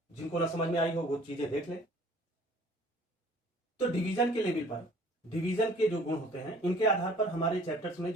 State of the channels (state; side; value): normal; both; correlation 0.53